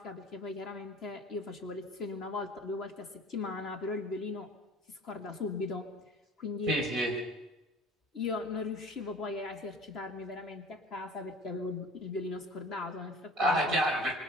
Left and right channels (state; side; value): normal; both; correlation 0.45